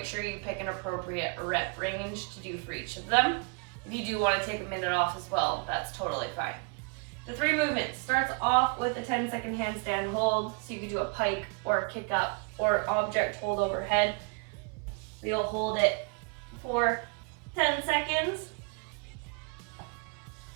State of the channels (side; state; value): left; quieter; 34.4 dB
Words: sure you pick an appropriate rep range to do for each of them. If you do want to take a minute off as well, that's totally fine. The 3 movements starts off with a 10-second handstand hold, so you can do a pike or a kick up or object hold overhead. You'll hold it for 10 seconds.